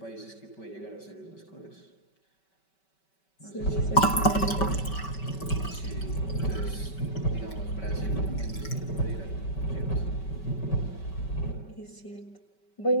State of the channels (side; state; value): right; late; 5.2 ms